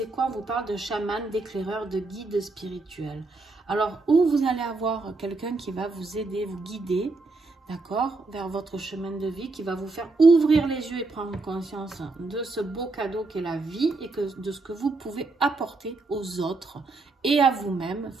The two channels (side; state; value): left; quieter; 3.5 dB